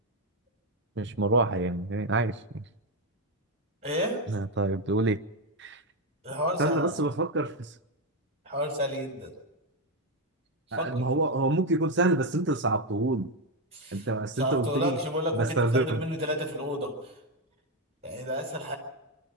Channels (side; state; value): both; normal; correlation 0.06